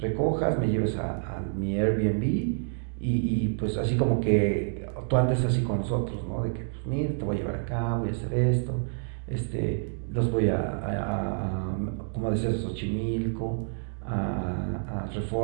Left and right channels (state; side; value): silent; left; digital silence